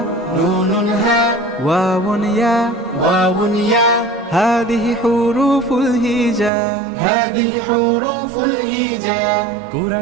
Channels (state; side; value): drops out; left; at 6.5 s